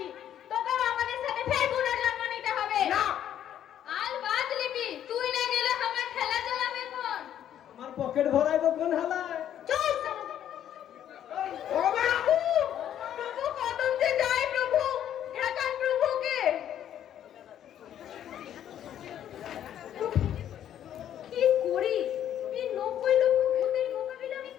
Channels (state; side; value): quieter; right; 10.5 dB